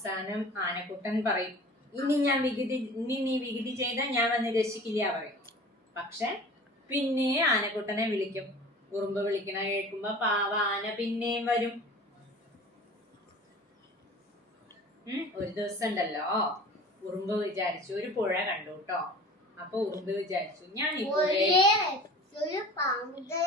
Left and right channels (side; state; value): both; normal; correlation 0.41